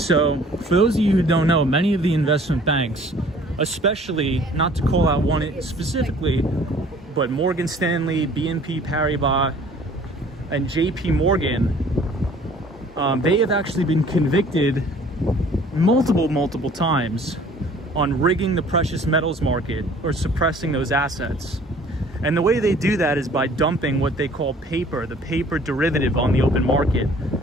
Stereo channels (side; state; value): both; normal; correlation 0.53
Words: for those of you who don't know, many of the investment banks, especially, not to call out one specifically, but Morgan Stanley, BNP Paribas, and JP Morgan, they have actually been convicted multiple times on rigging the precious metals market or suppressing those assets. And the way they do that is by dumping what they call paper, the paper derivative on the open market,